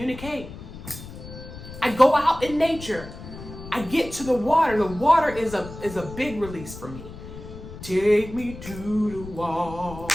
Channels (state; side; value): noise; left; rumble, 13 dB below the sound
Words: I go out in nature. I get to the water. The water is a big release for me. Take me to the